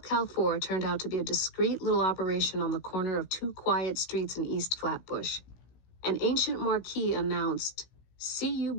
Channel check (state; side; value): late; right; 16 ms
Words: Cal 4 turned out to be a discreet little operation on the corner of two quiet streets in East Flatbush. An ancient marquee announced